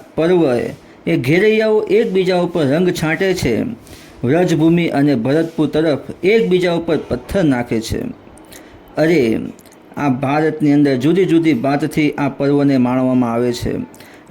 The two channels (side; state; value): both; identical; correlation 1.00